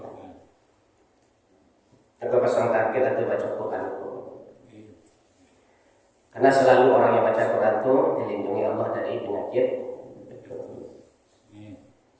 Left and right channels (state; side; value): identical; both; correlation 1.00